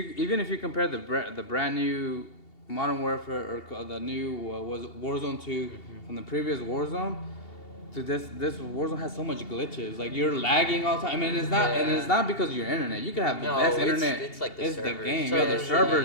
if you compare the brand new Modern Warfare or the new was Warzone 2 from the previous Warzone to this Warzone has so much glitches. Like you're lagging all the time. I mean, it's not because of your internet. You can have the No, best it's- internet. it's like the the servers. game. Yeah, the Servers,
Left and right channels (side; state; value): right; late; 2.8 ms